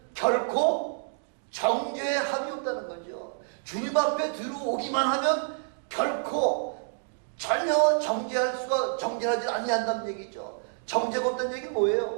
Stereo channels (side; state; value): left; silent; digital silence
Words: 결코 정죄의 함이 없다는 거죠. 주님 앞에 들어오기만 하면 결코 전혀 정죄하지 아니한다는 얘기죠. 정죄가 없다는 얘기는